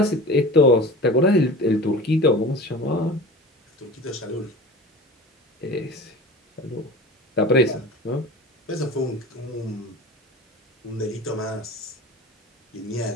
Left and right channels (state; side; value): normal; both; correlation 0.36